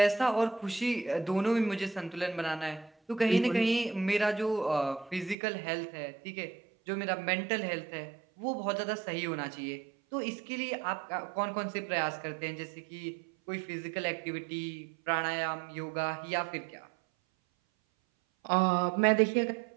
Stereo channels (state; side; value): drops out; left; at 5.4 s